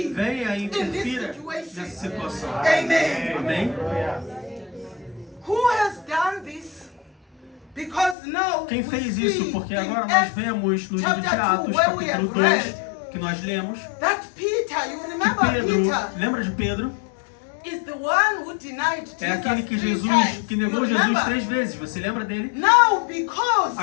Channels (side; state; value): right; drops out; at 8.2 s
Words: Venha e In this interfira situation. nessa situação. Amen. Amém? Who has done this? Because now Quem we fez see isso? Porque in agora nós Acts vemos no livro de chapter Atos, 2, where we capítulo have 2, read que nós lemos, that Peter, you que remember Pedro, Peter, lembra de Pedro? is the one who denied Jesus É aquele que 3 Jesus, times. que negou You Jesus remember? 3 vezes. Você lembra dele? Now, because